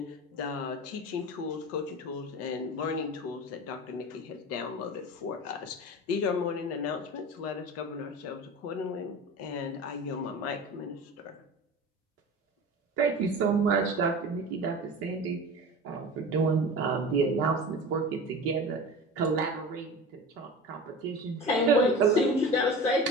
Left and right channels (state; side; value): normal; both; correlation 0.33